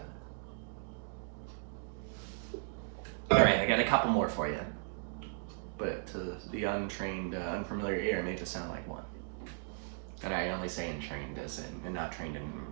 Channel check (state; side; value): quieter; left; 39.4 dB